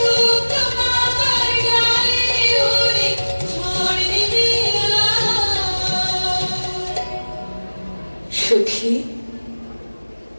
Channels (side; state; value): both; inverted; correlation -1.00